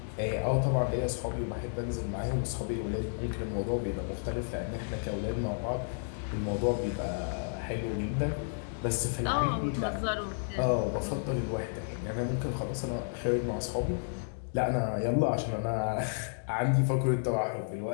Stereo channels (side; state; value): right; silent; digital silence